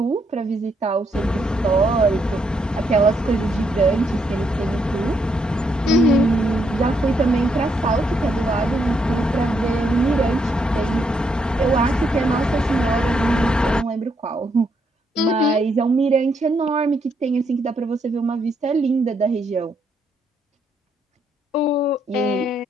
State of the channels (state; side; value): normal; both; correlation 0.75